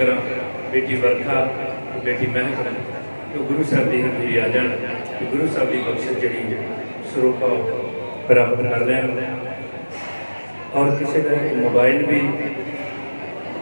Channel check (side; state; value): both; inverted; correlation -1.00